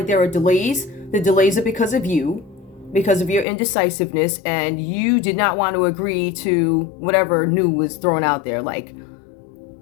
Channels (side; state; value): right; drops out; at 3.5 s